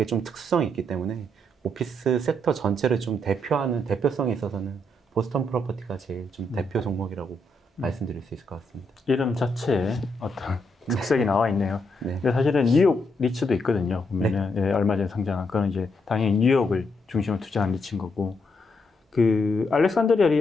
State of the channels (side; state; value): both; normal; correlation 0.78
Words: 좀 특수성이 있기 때문에 오피스 섹터 전체를 좀 대표하는 대표성이 있어서는 보스턴 프로퍼티가 제일 좀 대표 종목이라고 말씀드릴 수 있을 것 같습니다. 이름 자체에 어떤 특색이 나와 있네요. 네. 근데 사실은 뉴욕 리츠도 있거든요. 보면은 얼마 전에 상장한 그건 이제 당연히 뉴욕을 중심으로 투자한 리츠인 거고 알렉산드리아